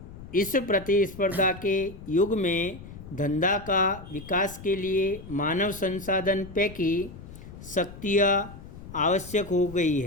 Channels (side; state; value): left; noise; rumble, 15 dB below the sound